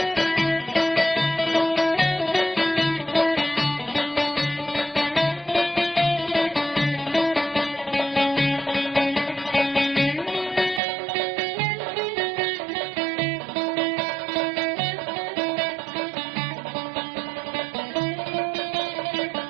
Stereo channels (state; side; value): drops out; left; at 10.8 s